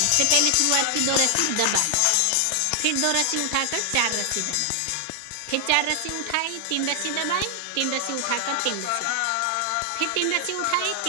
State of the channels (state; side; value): different; both; correlation 0.00